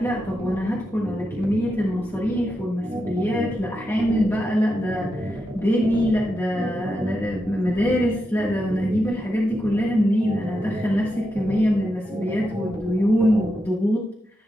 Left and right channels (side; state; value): both; normal; correlation 0.86